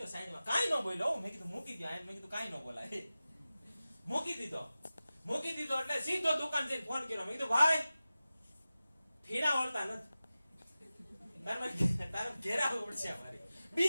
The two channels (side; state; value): both; inverted; correlation -0.95